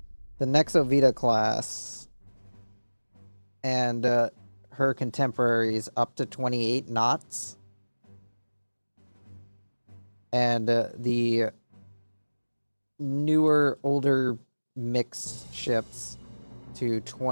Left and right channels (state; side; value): inverted; both; correlation -1.00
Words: Nexo Vita class and her contemporaries up to 28 knots. And the newer, older mixed ships to